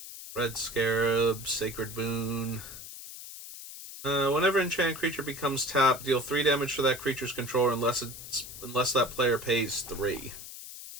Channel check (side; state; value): left; noise; hiss, 12 dB below the sound